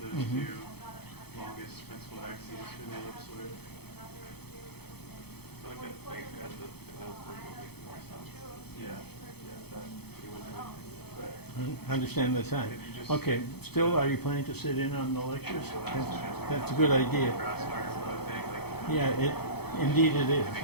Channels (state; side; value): late; right; 0.97 ms